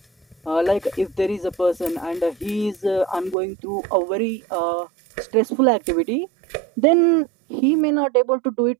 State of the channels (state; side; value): drops out; left; at 3.4 s